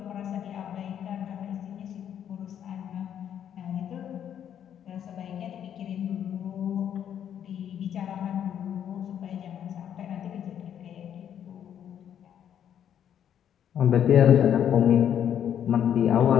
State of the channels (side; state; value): right; quieter; 9.5 dB